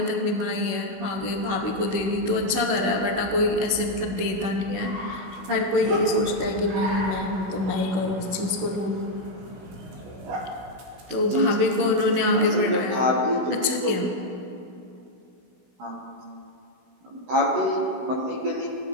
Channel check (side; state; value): left; late; 16 ms